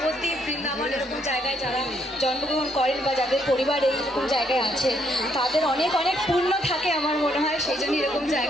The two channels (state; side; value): normal; both; correlation 0.72